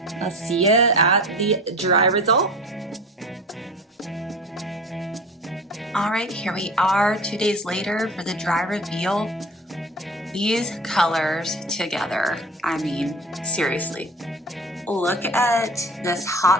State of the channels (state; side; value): normal; both; correlation 0.37